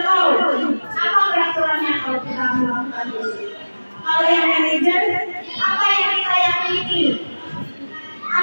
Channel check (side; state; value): both; inverted; correlation -1.00